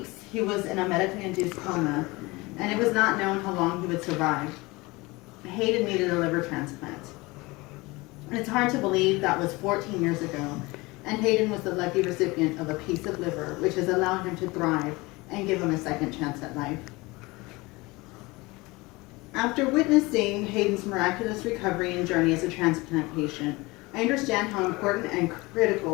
he was in a medically induced coma, and it was not known how long he would survive. Hayden needed a liver transplant. And it's hard to believe that was 14 years ago, and Hayden was the lucky recipient of a piece of liver, which has allowed him to thrive and give him a second chance at life. After witnessing Hayden's miraculous recovery and journey as a transplant patient, I understand how important and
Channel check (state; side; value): quieter; right; 23.0 dB